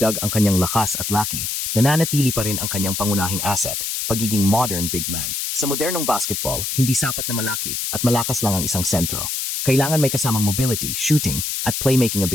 ang kanyang lakas at laki, nananatili pa rin ang kanyang pangunahing asset, pagiging modern big man. Sa modernong basketball, hindi sapat na malaki at malakas lang ang isang sentro. Kailangan may kasamang mobility, shooting, at playmaking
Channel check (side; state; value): left; noise; hiss, 2 dB below the sound